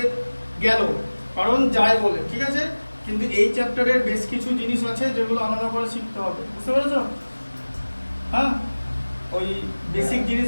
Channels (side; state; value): both; inverted; correlation -1.00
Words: গেল কারণ যায় বলে, ঠিক আছে, কিন্তু এই চ্যাপ্টারের বেশ কিছু জিনিস আছে যেগুলো আলাদা করে শিখতে হবে, বুঝতে পেরেছো? হ্যাঁ, ওই বেসিক